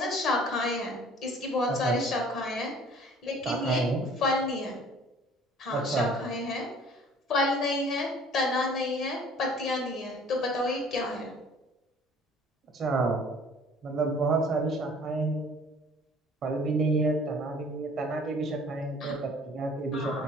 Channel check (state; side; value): normal; both; correlation 0.51